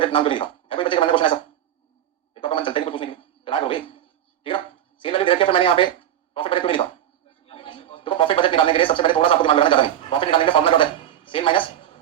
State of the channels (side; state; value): left; quieter; 11.2 dB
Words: नाम क्यों लिखा है कोई बच्चे का मैंने क्वेश्चन ऐसा एक तो मन चलते नहीं कुछ पूछने के लिए तैयार हो गई ठीक है ना सेल वैल्यू रखी है फिर मैंने यहाँ पे प्रॉफिट बजट क्यों लिखा देखो प्रॉफिट बजट निकालने के लिए सबसे पहले थोड़ा सा आपको दिमाग लगाना ज्यादा नहीं प्रॉफिट निकालने का फॉर्मूला क्या होता है सेल